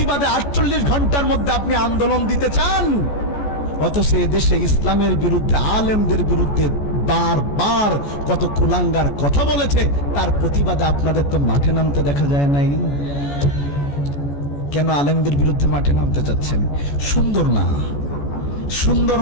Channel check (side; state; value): right; late; 14 ms